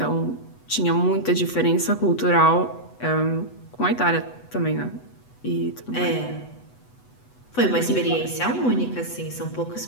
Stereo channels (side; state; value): right; late; 8.1 ms